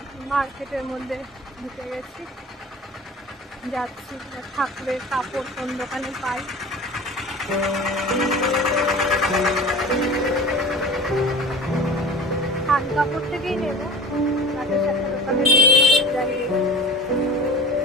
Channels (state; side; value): normal; both; correlation 0.39